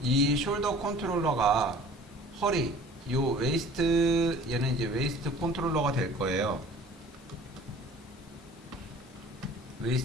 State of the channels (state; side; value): normal; both; correlation 0.47